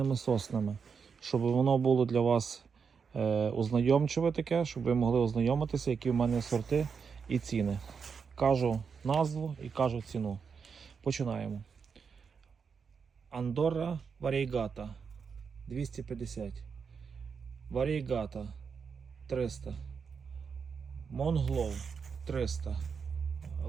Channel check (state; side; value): quieter; left; 6.0 dB